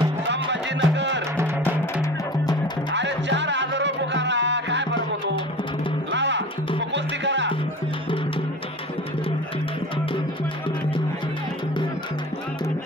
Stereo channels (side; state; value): both; normal; correlation 0.38